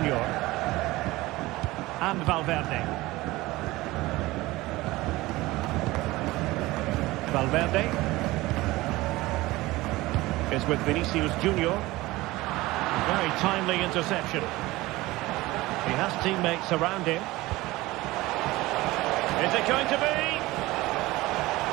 And Valverde. Valverde is with Vinicius Junior. Very timely interception. He has teammates around him. Is it going to be?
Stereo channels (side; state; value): left; quieter; 19.3 dB